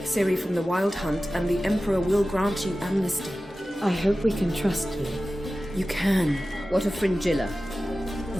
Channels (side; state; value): both; normal; correlation 0.95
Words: Ciri from the Wild Hunt, and the Emperor will grant you amnesty. I hope we can trust you. You can. What of Fringilla?